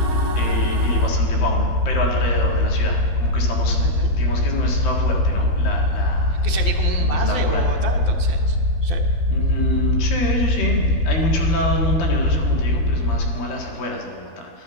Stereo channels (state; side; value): late; right; 12 ms